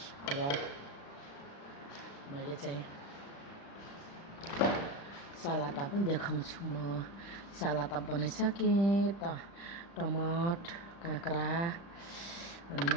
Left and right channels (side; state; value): right; late; 35 ms